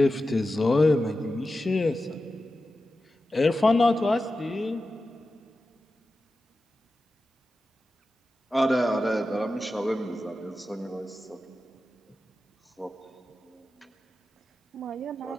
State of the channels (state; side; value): normal; both; correlation 0.93